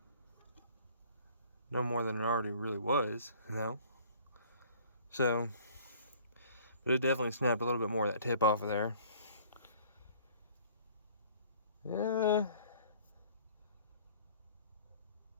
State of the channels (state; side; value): inverted; both; correlation -0.53